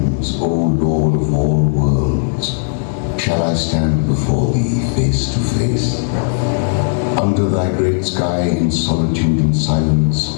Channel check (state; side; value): silent; right; digital silence